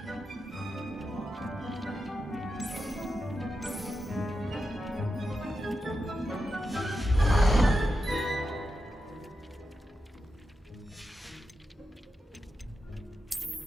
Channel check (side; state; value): both; normal; correlation 0.88